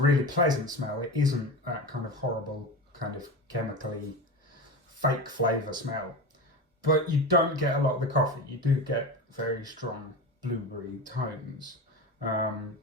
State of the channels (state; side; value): normal; both; correlation 0.25